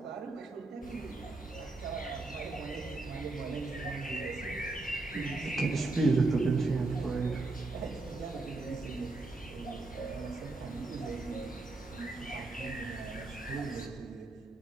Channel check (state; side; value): quieter; left; 3.2 dB